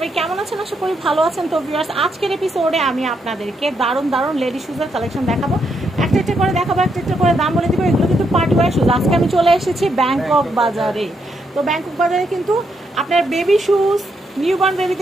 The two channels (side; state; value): both; normal; correlation 0.78